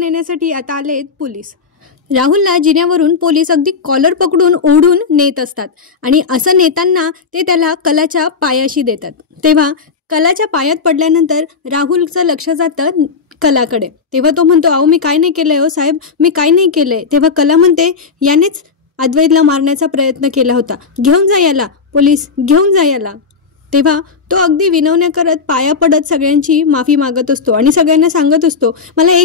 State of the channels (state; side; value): quieter; right; 5.3 dB